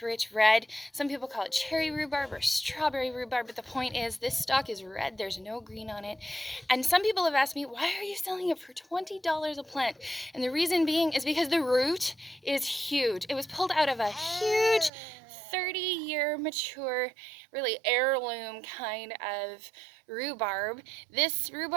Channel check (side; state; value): left; drops out; at 14.9 s